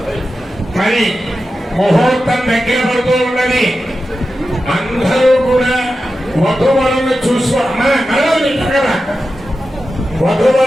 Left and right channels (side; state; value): both; normal; correlation 0.92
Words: మరి ముహూర్తం దగ్గర పడుతూ ఉన్నది. అందరూ కూడా వధువరులను చూసుకోవాలి.